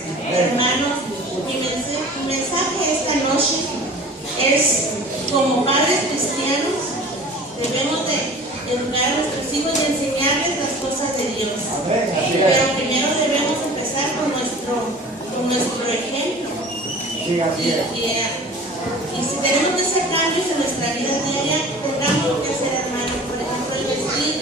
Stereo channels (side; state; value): both; normal; correlation 0.43